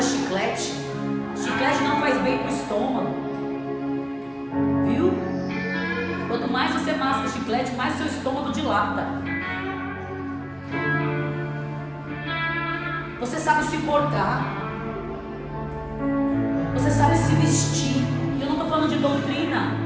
chiclete. Chiclete não faz bem pro estômago. Viu? Quanto mais você masca chiclete, mais seu estômago dilata. Você sabe se portar. Você sabe se vestir. Eu não estou falando de doutrina.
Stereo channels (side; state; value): both; identical; correlation 1.00